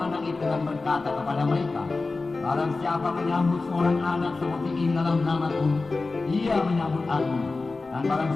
itu dan berkata kepada mereka, barang siapa menyambut seorang anak seperti ini dalam namaku, ia menyambut aku. Dan barang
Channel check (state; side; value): quieter; right; 3.7 dB